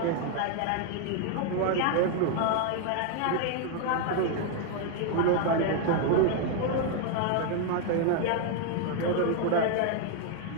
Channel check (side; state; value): both; different; correlation 0.00